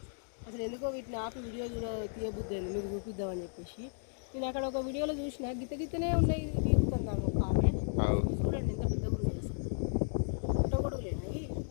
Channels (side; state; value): right; silent; digital silence